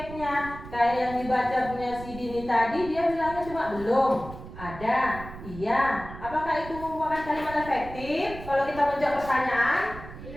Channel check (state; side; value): noise; right; rumble, 13 dB below the sound